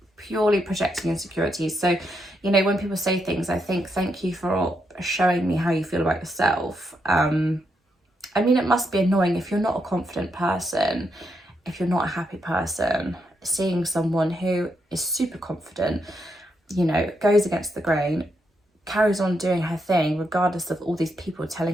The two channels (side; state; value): both; normal; correlation 0.80